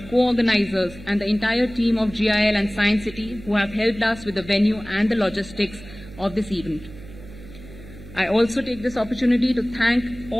co-organizers, and the entire team of GIL and Science City who have helped us with the venue and the logistics of this event. I also take this opportunity to thank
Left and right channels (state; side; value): noise; right; hum, 17 dB below the sound